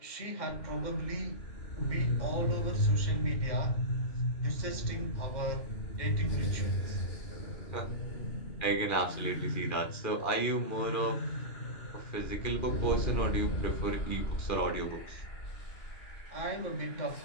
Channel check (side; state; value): right; late; 2.4 ms